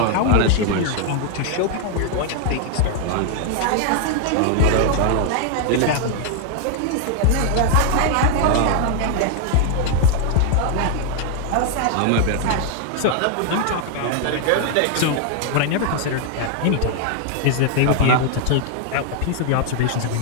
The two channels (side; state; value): both; different; correlation 0.00